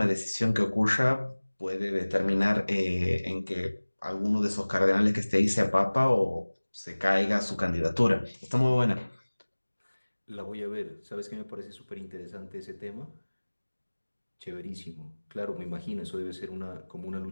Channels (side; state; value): both; inverted; correlation -1.00